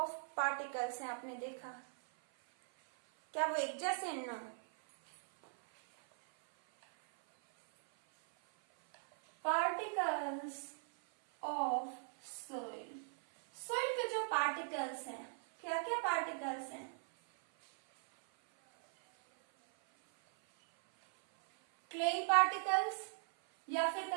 particles हैं, आपने देखा क्या वो एक जैसे? No, particles of soil, soil के जो पार्टिकल्स हैं, क्या क्या पार्टिकल्स हैं? क्ले पार्टिकल्स या फिर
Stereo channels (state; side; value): silent; left; 52 dB below the other